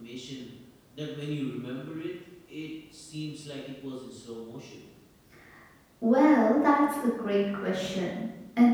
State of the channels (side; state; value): both; identical; correlation 1.00